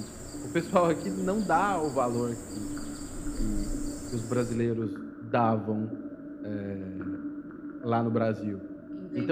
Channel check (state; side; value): identical; both; correlation 1.00